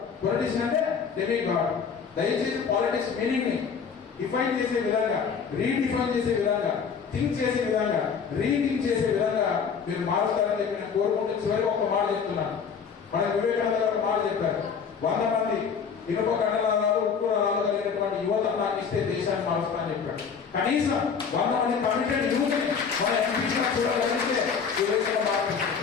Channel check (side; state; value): right; quieter; 6.3 dB